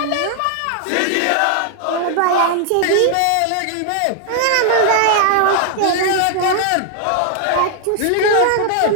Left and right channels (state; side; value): different; both; correlation 0.00